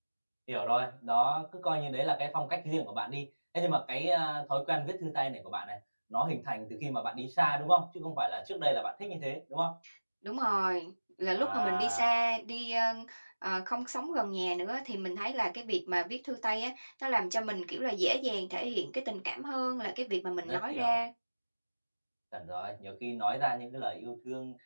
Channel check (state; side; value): inverted; both; correlation -1.00